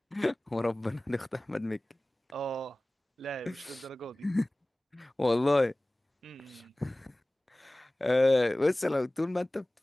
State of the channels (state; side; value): normal; both; correlation 0.98